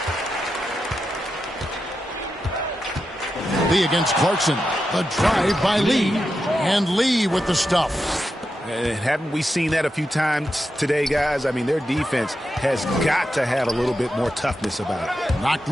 Lee against Clarkson. The drive by Lee. And Lee with the stuff. And haven't we seen that a few times today, guys? I mean, their defense has got to have a little bit more toughness about it. Knocked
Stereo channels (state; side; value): normal; both; correlation 0.88